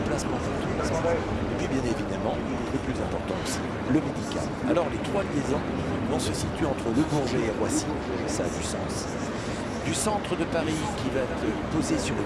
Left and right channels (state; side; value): identical; both; correlation 1.00